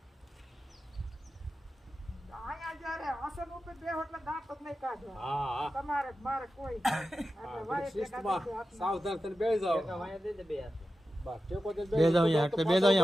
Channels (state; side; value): normal; both; correlation 0.92